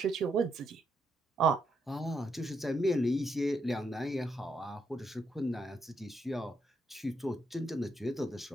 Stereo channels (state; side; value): normal; both; correlation 0.79